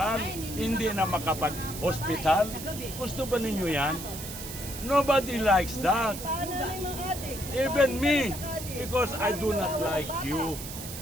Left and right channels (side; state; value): right; noise; hiss, 10 dB below the sound